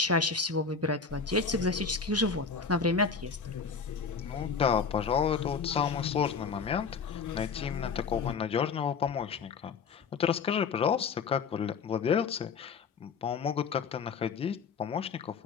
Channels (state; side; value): quieter; right; 5.4 dB